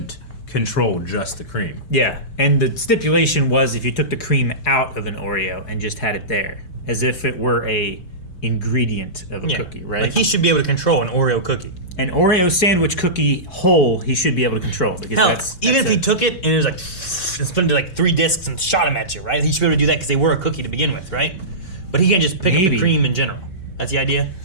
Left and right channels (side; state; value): right; late; 5.2 ms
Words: control just the cream. Yeah, and the stipulation was if you took the cream out of an Oreo and just had it there, as if it were a ingredient of a cookie, right? Like he should be able to control an Oreo cookie. An Oreo sandwich cookie whole, he should be able to control. Because Hell, that's even if he took it and it was like, and split into like 3 discs and shot them at you, right? He should be able to do that because they were a cookie to begin with, right? But he can't just pick up the cream in general. That's the idea?